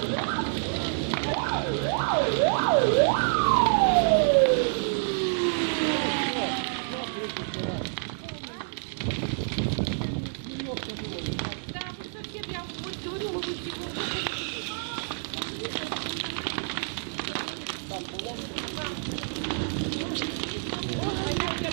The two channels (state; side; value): silent; left; digital silence